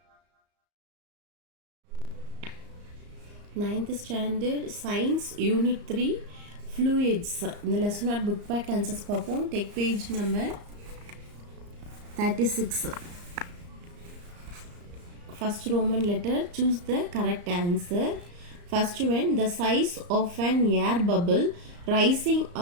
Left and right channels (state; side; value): late; left; 34 ms